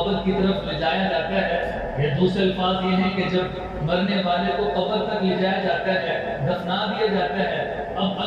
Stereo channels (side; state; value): both; identical; correlation 1.00